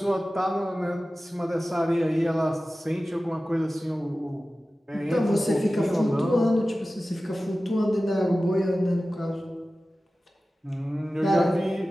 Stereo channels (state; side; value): normal; both; correlation 0.96